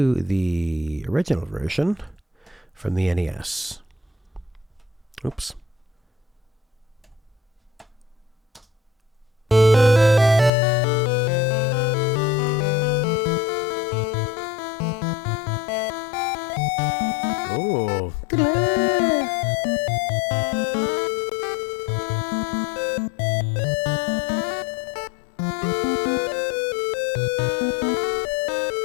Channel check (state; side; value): drops out; right; at 10.5 s